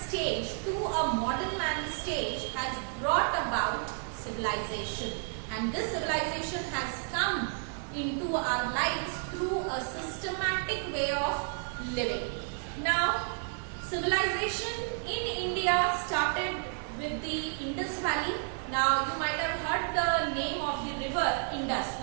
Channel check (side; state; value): left; silent; 57 dB below the other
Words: to a modern man stage has brought about civilization. And this civilization has come into our lives through a systematic way of living. Now, civilization in India started with the Indus Valley. Now, you might have heard the name of the river Indus.